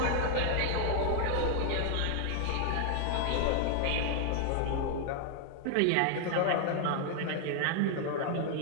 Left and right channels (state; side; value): different; both; correlation 0.00